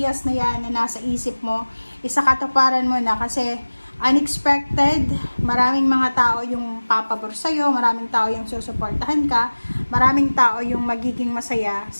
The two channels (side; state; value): both; inverted; correlation -1.00